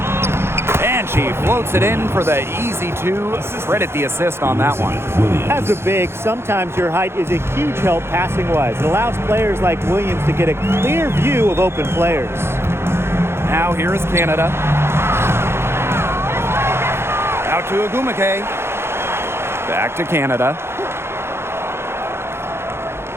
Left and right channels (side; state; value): left; late; 0.12 ms